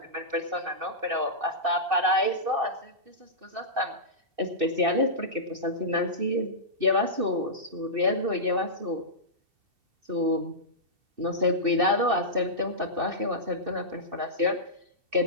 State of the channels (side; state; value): left; late; 2.6 ms